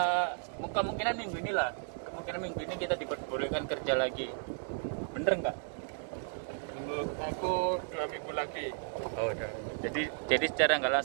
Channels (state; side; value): silent; left; digital silence